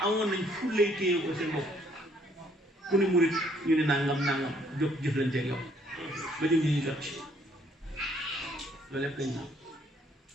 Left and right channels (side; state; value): both; normal; correlation 0.65